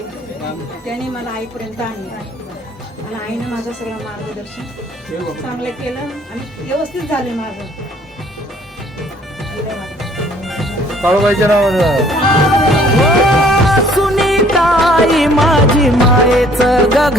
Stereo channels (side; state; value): both; normal; correlation 0.58